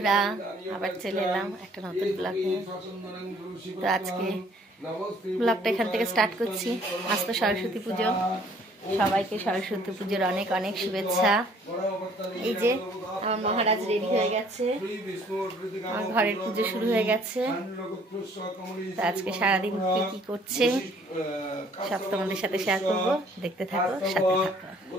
আবার চলে এলাম একটা নতুন ব্লগ নিয়ে। তো আজকে ব্লগটা এখান থেকে স্টার্ট করছি। আজ তো সরস্বতী পুজো, সবাইকে সরস্বতী পুজোর অনেক অনেক শুভেচ্ছা। এই যে আমার মহারাজ রেডি হয়ে গেছে, আমার ঘরের পুজো শুরু হয়ে গেছে। তো আজকে সারাদিন কি কি করছে সব তোমাদের সাথে শেয়ার করবো, দেখতে থাকো, সাথে থাকো।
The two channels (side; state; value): both; normal; correlation 0.58